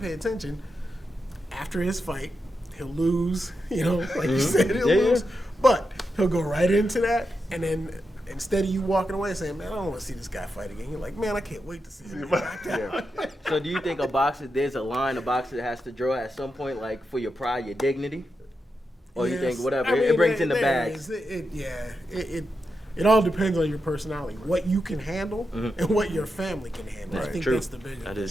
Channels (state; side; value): normal; both; correlation 0.87